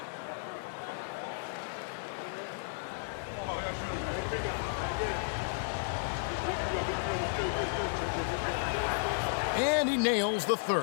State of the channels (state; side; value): silent; right; digital silence